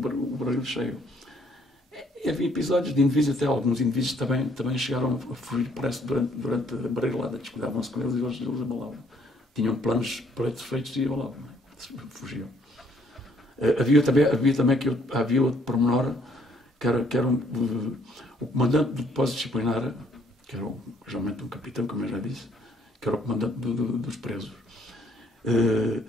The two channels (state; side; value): normal; both; correlation 0.66